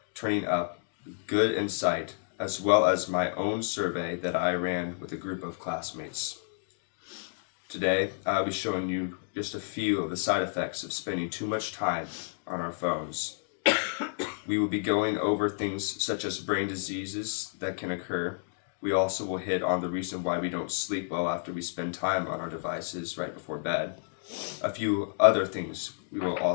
turning up good insight, as well as my own survey that I ran with a group of classmates. Today, I'll be showing you just a few of the side effects of spending too much time on our phones. We will be going over things such as brain diseases that can occur. We also will hit on the reason why we don't sleep well after we spend time on our devices right before bed. A few other things we will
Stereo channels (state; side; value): silent; right; digital silence